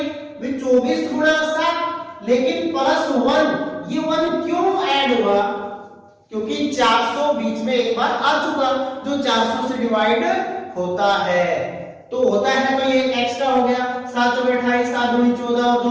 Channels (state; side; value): identical; both; correlation 1.00